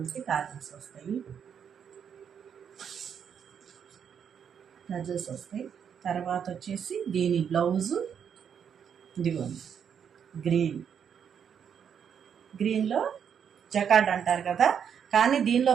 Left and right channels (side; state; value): left; quieter; 7.8 dB